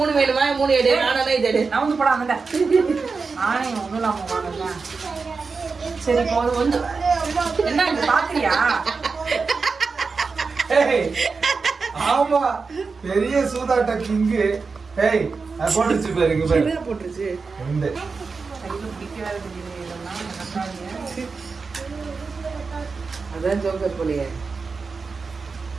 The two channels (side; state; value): left; quieter; 4.6 dB